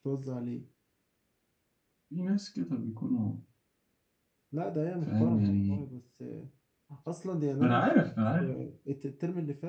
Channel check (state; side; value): identical; both; correlation 1.00